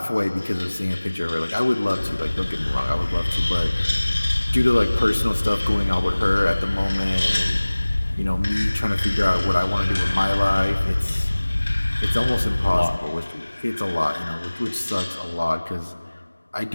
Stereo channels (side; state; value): both; inverted; correlation -1.00